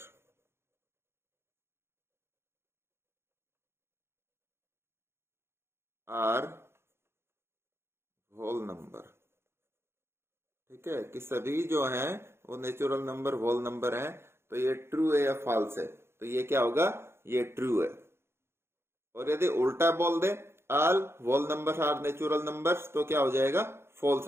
are whole number. ठीक है, कि सभी जो हैं वो नेचुरल नंबर होल नंबर हैं। तो ये ट्रू है या फॉल्स है, तो ये क्या होगा, ये ट्रू है। और यदि उल्टा बोल दे all whole numbers are natural numbers, तो क्या हो जाएगा, फॉल्स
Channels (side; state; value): left; late; 0.12 ms